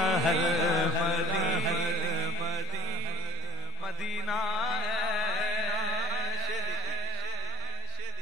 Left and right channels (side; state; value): both; normal; correlation 0.32